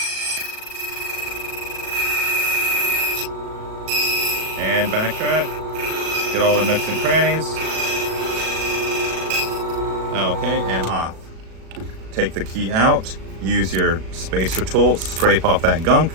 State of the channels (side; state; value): left; late; 37 ms